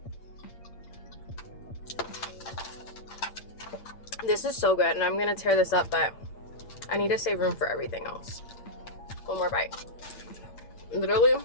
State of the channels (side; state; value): right; late; 8.7 ms